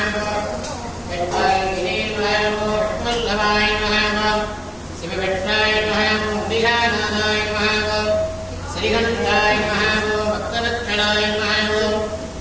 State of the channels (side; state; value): both; identical; correlation 1.00